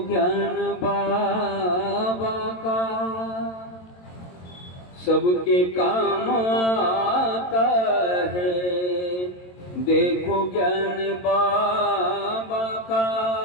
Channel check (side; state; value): right; late; 22 ms